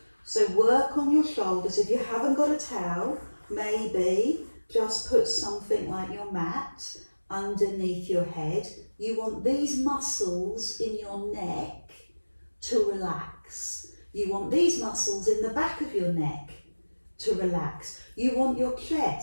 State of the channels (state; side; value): inverted; both; correlation -1.00